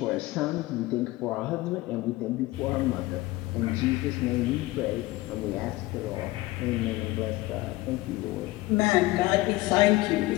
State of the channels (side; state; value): right; quieter; 19.1 dB